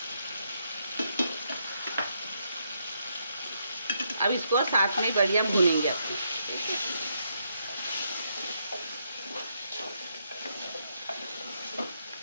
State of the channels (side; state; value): both; inverted; correlation -0.77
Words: अब इसको साथ में बढ़िया भूनेंगे अपने।